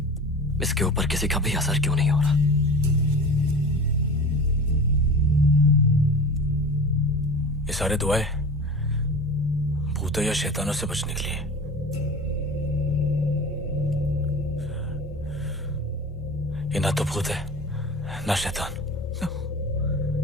इसके ऊपर किसी का भी असर क्यों नहीं हो रहा? ये सारे दुआएं भूतों या शैतानों से बचने के लिए। ये ना तो भूत है ना शैतान।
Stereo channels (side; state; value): both; normal; correlation 0.34